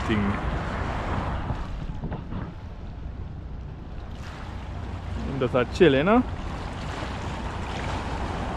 things. Him just a chill, you know.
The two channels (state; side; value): identical; both; correlation 1.00